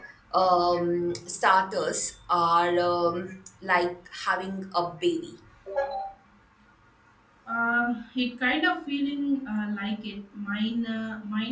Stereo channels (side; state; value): both; identical; correlation 1.00